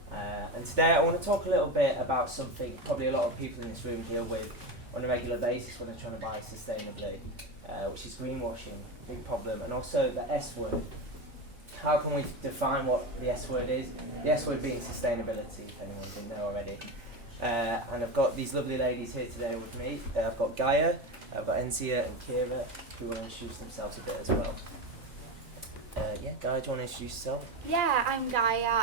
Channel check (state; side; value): normal; both; correlation 0.19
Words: And today I want to talk a little bit about something probably a lot of people in this room deal with on a regular basis when they're trying to buy sustainably, which is greenwashing, big problem, and also the S word. How can we define what the S word is? The S word being sustainability, if anyone didn't know already. And I've got these lovely ladies here today with me. I've got Gaia, I've got Enziya and Kiera, who will introduce themselves a bit as well. Gaia, do you want to introduce yourself? Yeah, I'm